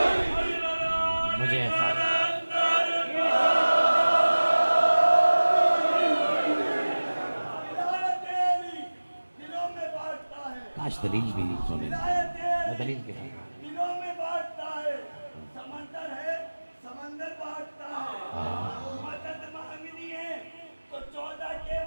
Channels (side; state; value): both; inverted; correlation -1.00